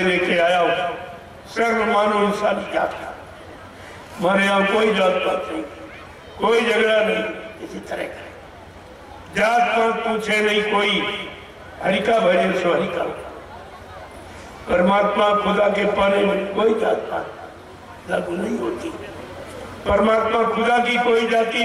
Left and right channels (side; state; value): both; identical; correlation 1.00